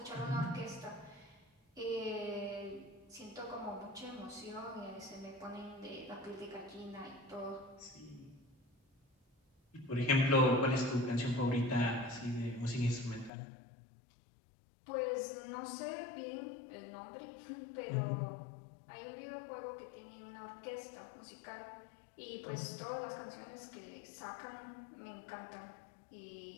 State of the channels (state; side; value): drops out; right; at 13.3 s